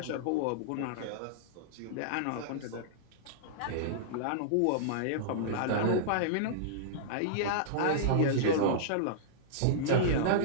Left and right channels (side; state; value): both; different; correlation -0.02